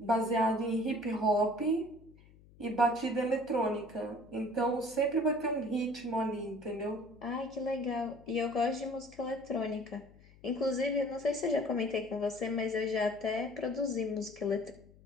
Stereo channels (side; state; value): left; noise; hum, 24 dB below the sound